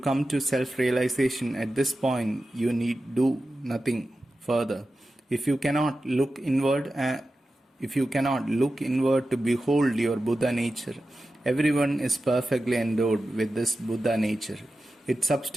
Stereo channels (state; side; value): normal; both; correlation 0.93